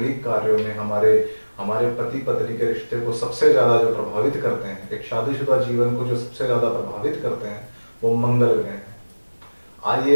कार्यों में, हमारे हमारे पति पत्नी के रिश्ते को सबसे ज्यादा जो प्रभावित करते हैं, एक शादीशुदा जीवन को जो सबसे ज्यादा प्रभावित करते हैं, वो मंगल ग्रह हैं।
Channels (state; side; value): inverted; both; correlation -1.00